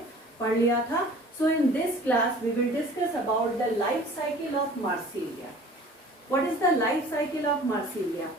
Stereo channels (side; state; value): both; normal; correlation 0.47